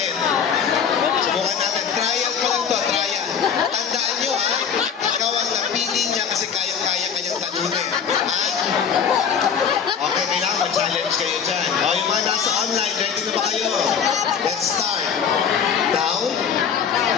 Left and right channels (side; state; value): right; quieter; 7.2 dB